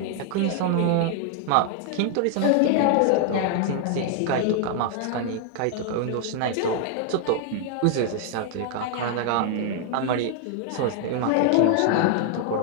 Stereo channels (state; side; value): different; both; correlation 0.00